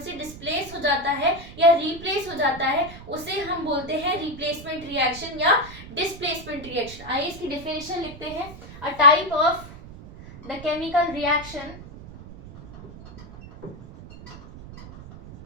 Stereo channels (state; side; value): noise; right; rumble, 16 dB below the sound